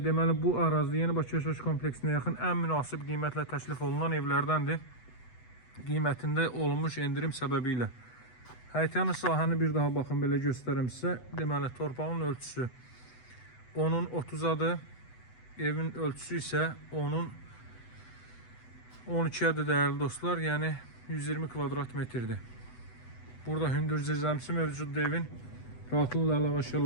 bu ərazidə Yeni Bakı yaşayış kompleksinə yaxın ən münasib qiymətlə təklif olunan evlərdəndir. Qiymətində olmuş endirim səbəbilə. Həyətyanı sahəni bir daha baxın, belə göstərəm sizə. Deməli torpağın ölçüsü onun 30-adır. Evin ölçüsü isə onun 12-ədir değerli dostlar. Yəni 120 kvadrat metrdir. Burada hündür zirzəmisi mövcuddur evin. Rahatlıqla əlavə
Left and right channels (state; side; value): late; right; 8.0 ms